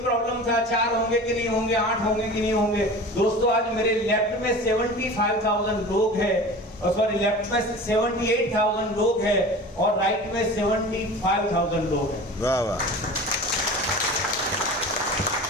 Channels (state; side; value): normal; both; correlation 0.37